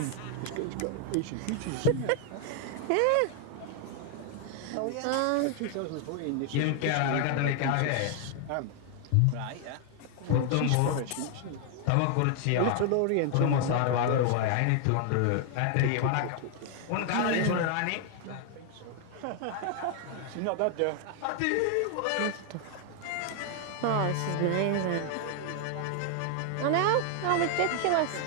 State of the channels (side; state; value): both; different; correlation 0.00